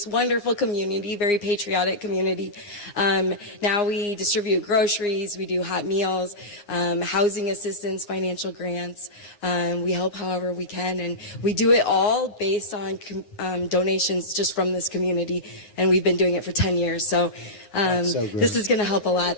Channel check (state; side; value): late; right; 9.7 ms